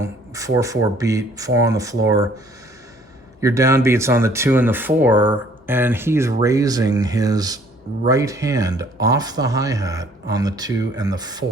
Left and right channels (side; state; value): both; normal; correlation 0.58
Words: beat, 4 on the floor, your downbeat's on the 2 and the 4, and he's raising his right hand off the hi-hat on the 2 and the